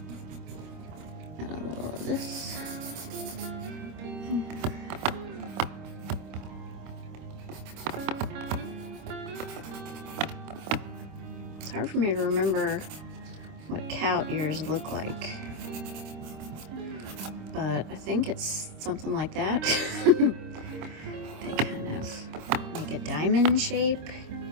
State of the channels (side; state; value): left; late; 26 ms